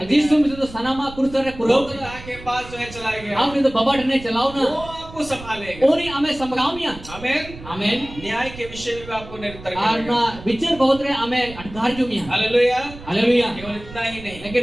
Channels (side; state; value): right; noise; rumble, 16 dB below the sound